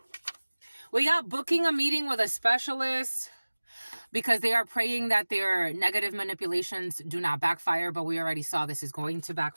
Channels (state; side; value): inverted; both; correlation -1.00